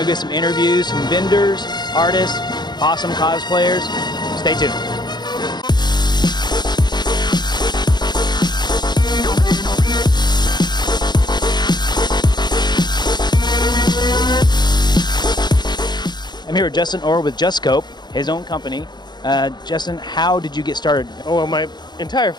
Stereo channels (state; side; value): late; right; 0.21 ms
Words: get some interviews, some vendors, artists, awesome cosplayers. Stay tuned. I'm here with Justin Orr with Just Scope, his own company. Justin, how did you get started? Oh, well, my entire